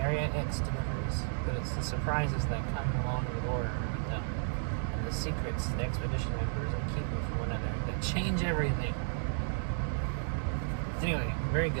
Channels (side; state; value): left; silent; digital silence